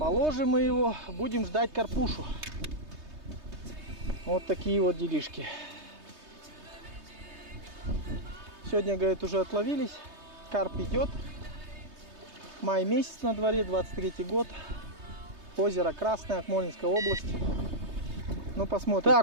мы его, будем ждать карпушу. Вот такие вот делишки. Сегодня, говорит, уже отловились. Карп идет. Май месяц на дворе, 23 год. Озеро Красное, Акмолинская область. Ну, посмотрим.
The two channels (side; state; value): left; late; 3.2 ms